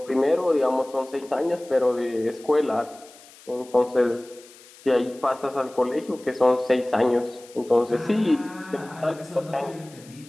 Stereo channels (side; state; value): left; noise; hiss, 23 dB below the sound